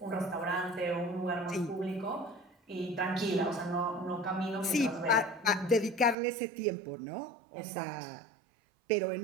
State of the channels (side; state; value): left; drops out; at 6.2 s